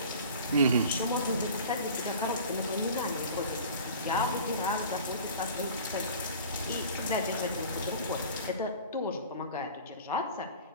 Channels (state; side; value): inverted; both; correlation -0.41